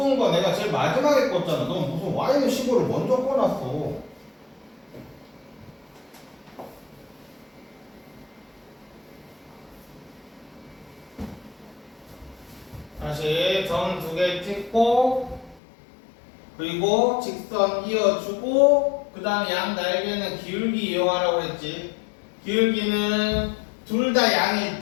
거 내가 제일 마지막에 껐잖아. 넌 무슨 y는 15를 먼저 꺼놨어. 다시 점 2개 찍고 그리고 직선 이어주고 그 다음 양 날개는 기울기 이용하라고 했지. 기울기는 둘 다 양일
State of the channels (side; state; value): right; drops out; at 15.6 s